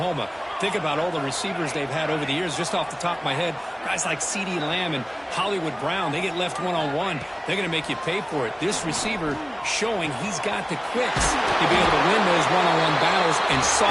Think about all the receivers they've had over the years. Just off the top of my head, guys like CeeDee Lamb and Hollywood Brown, they get left one-on-one. They're going to make you pay for it. This receiver showing he's got the quicks to be able to win those one-on-one battles and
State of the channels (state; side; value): identical; both; correlation 1.00